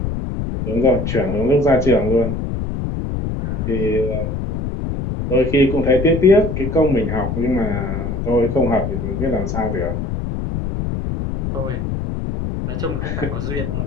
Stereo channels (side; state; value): left; noise; rumble, 3 dB below the sound